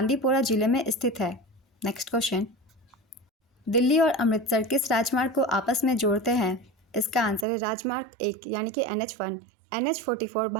जिले में स्थित है। नेक्स्ट क्वेश्चन, दिल्ली और अमृतसर किस राजमार्ग को आपस में जोड़ते हैं? इसका आंसर है राजमार्ग 1 यानी कि NH1। NH44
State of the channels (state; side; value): drops out; left; at 7.5 s